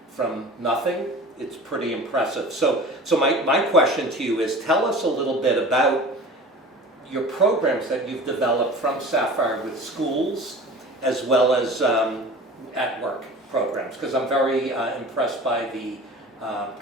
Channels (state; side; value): normal; both; correlation 0.39